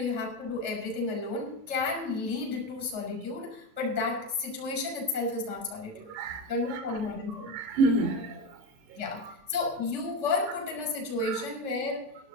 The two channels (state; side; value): late; left; 3.4 ms